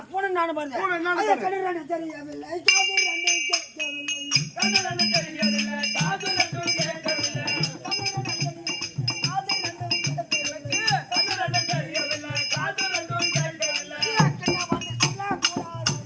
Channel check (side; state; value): both; identical; correlation 1.00